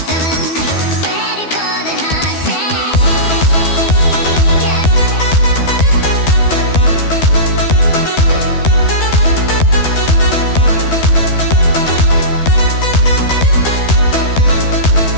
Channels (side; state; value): right; late; 12 ms